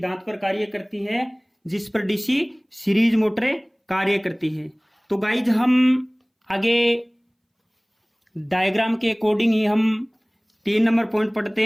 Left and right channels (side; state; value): both; identical; correlation 1.00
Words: पर कार्य करती है जिस पर डीसी सीरीज मोटरें कार्य करती है। तो गाइज हम आगे डायग्राम के अकॉर्डिंग ही हम 3 नंबर पॉइंट